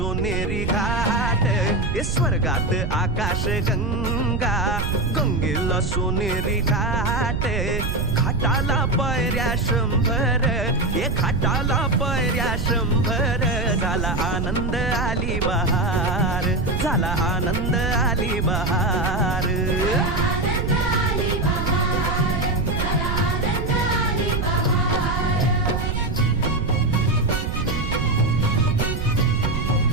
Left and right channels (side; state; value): right; noise; rumble, 1 dB below the sound